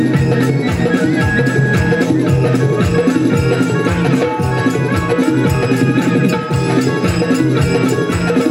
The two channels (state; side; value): identical; both; correlation 1.00